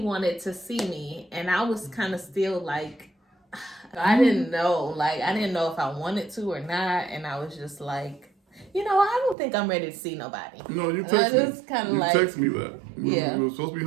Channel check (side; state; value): left; drops out; at 9.3 s